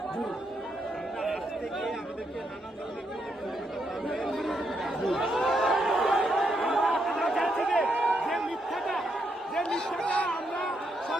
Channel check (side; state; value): both; normal; correlation 0.78